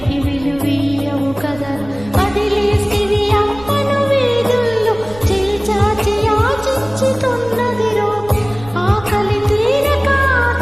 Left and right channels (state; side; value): noise; right; rumble, 18 dB below the sound